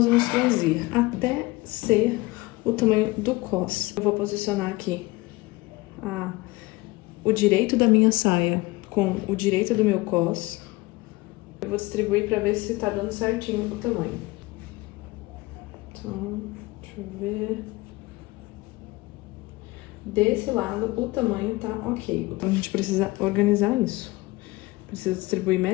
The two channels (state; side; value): quieter; right; 21.5 dB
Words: vamos franzir? Até ser o tamanho do cos. Eu vou posicionar aqui o direito da minha saia com o direito do meu cos. Eu vou distribuir pra ver se tá dando certinho o tamanho. Então, deixa eu ver. Desse lado, o tamanho tá ok. Então, a gente precisa organizar isso. Precisa distribuir